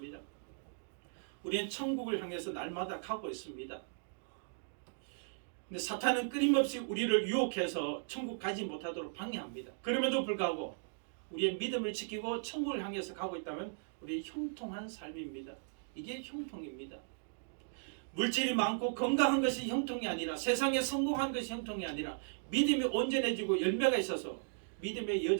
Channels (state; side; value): silent; left; digital silence